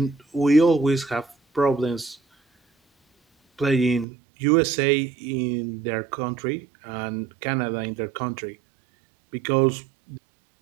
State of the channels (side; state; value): left; drops out; at 4.0 s